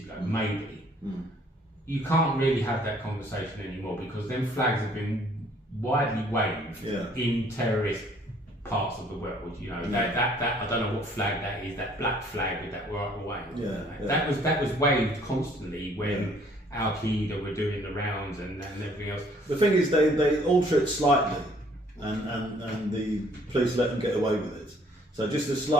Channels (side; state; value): both; normal; correlation 0.60